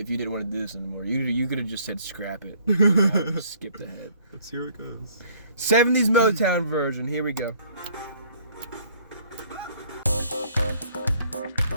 didn't want to do this anymore. You could have just said scrap it. I would have skipped ahead. Let's see where it goes. 70s Motown version. Here we go.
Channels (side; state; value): both; inverted; correlation -0.60